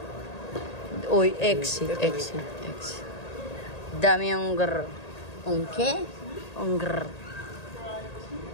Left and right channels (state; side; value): late; right; 1.8 ms